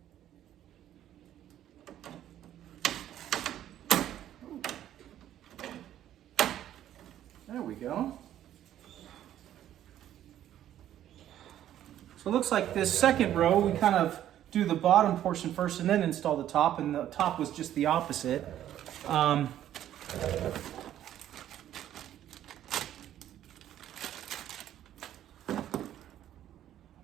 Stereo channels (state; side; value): quieter; left; 11.7 dB